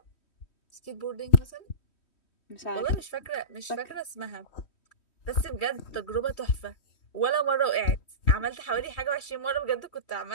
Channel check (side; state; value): right; late; 3.1 ms